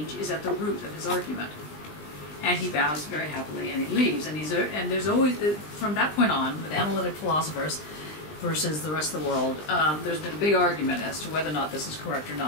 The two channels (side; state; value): right; late; 20 ms